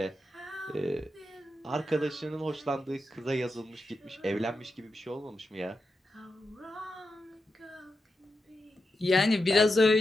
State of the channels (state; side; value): normal; both; correlation 0.88